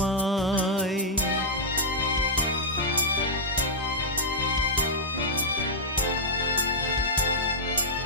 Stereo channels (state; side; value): normal; both; correlation -0.07